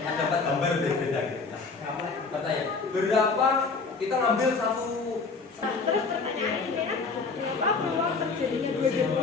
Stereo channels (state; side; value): quieter; right; 4.4 dB